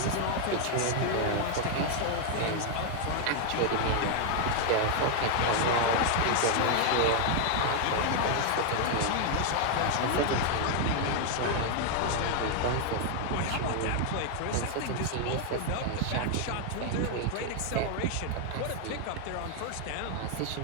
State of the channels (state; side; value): different; both; correlation 0.00